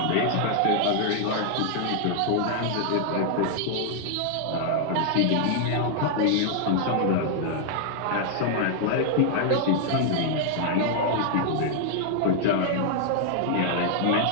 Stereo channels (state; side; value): different; both; correlation 0.00